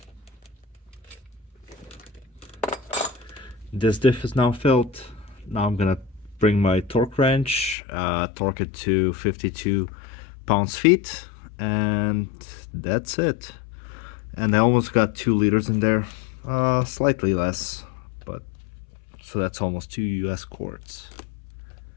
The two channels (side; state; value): right; drops out; at 7.8 s